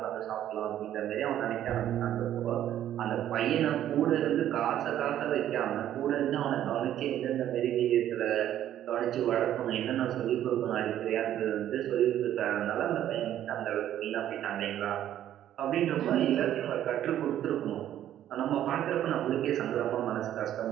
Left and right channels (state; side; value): quieter; left; 11.6 dB